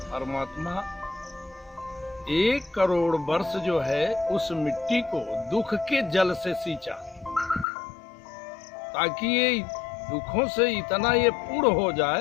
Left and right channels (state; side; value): drops out; right; at 7.7 s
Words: परमात्मा 1 करोड़ वर्ष जो है उस मिट्टी को दुख के जल से सींचा, ताकि ये दुखों से इतना ये पूर्ण हो